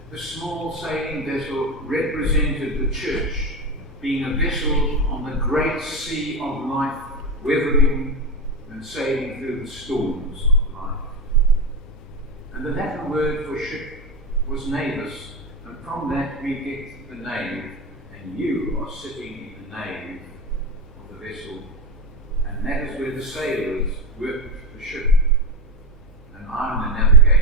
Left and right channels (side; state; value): both; normal; correlation 0.16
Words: The small sailing vessel represented the church, being a vessel on the great sea of life, weathering and sailing through the storms of life. And the Latin word for ship was navis, and from that we get the nave, and you are sitting in the nave of the vessel, and that is where the sailors worked the ship, and I'm the